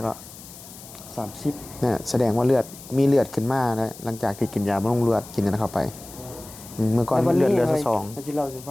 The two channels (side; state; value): left; noise; hiss, 17 dB below the sound